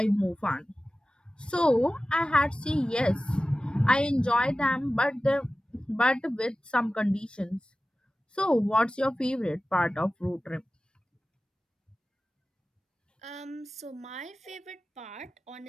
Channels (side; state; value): both; normal; correlation 0.96